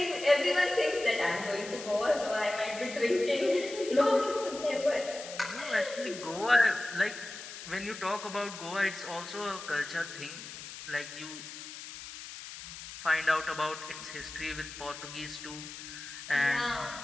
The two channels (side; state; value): left; noise; hiss, 12 dB below the sound